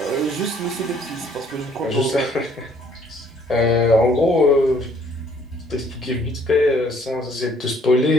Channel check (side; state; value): both; normal; correlation 0.62